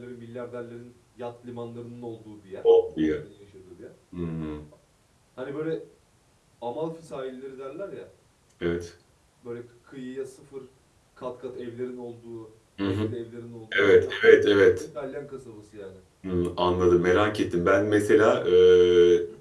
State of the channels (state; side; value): identical; both; correlation 1.00